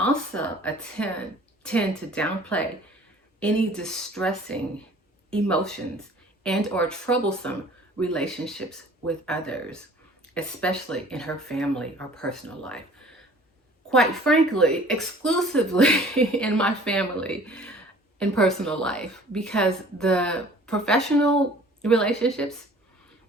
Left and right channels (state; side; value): normal; both; correlation 0.50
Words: tend to downplay any distressing emotions and or troublesome relationships with others, especially in her family or personal life. Quite frankly, exclusively in my family and personal life, because the professional relationships